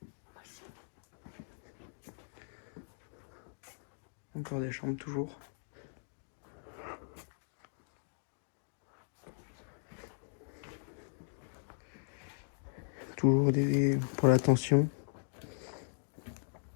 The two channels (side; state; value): right; silent; digital silence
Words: Encore des chambres toujours. Toujours pour la tension.